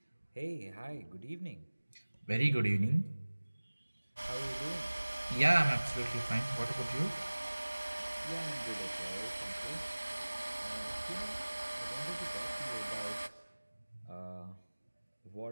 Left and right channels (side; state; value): both; inverted; correlation -1.00